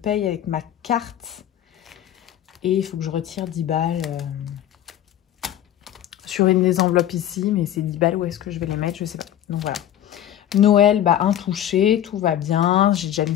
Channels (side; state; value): right; quieter; 11.4 dB